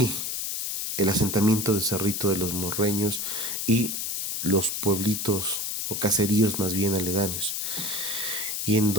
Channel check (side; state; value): left; noise; hiss, 3 dB below the sound